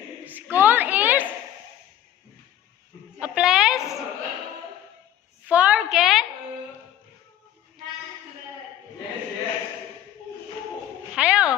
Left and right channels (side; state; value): right; quieter; 11.6 dB